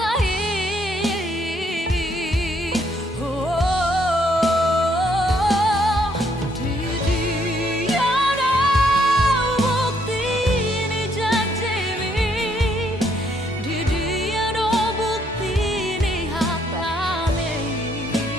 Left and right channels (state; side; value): normal; both; correlation 0.70